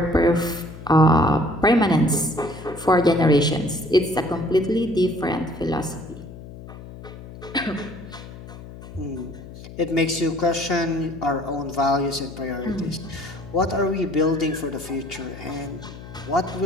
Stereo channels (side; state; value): left; noise; hum, 15 dB below the sound